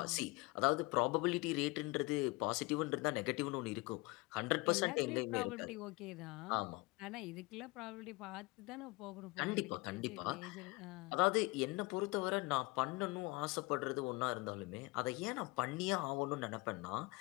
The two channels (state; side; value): quieter; right; 24.1 dB